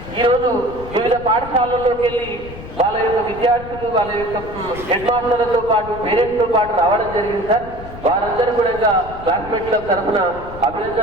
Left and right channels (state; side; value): noise; left; rumble, 13 dB below the sound